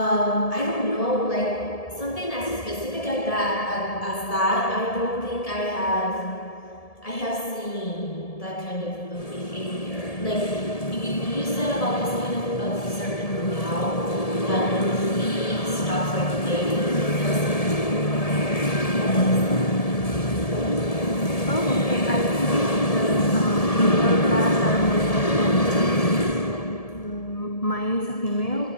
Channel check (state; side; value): late; right; 1.7 ms